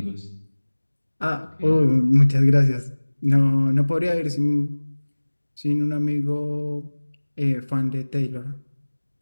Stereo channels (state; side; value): inverted; both; correlation -1.00